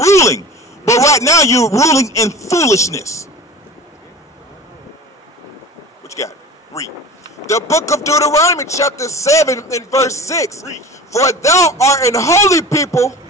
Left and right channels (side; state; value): both; normal; correlation 0.37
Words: But right now you're ruling in foolishness. What you got? Read. The book of Deuteronomy chapter 7 and verse 6. Read. For thou art an holy people.